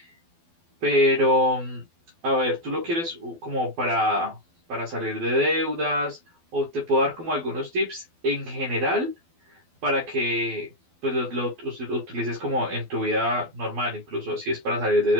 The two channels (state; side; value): late; left; 12 ms